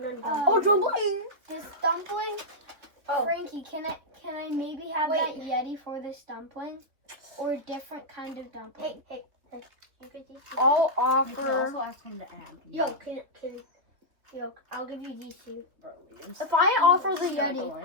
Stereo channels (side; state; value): left; late; 3.5 ms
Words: on Oh, dumpling! This dumpling. Oh. Frankie, can I maybe have that Yeti for this dumpling, or a different kind of dumpling? Hey. You get these two. I'll You can offer. also ask him to add. I'll give you these two. If I offer the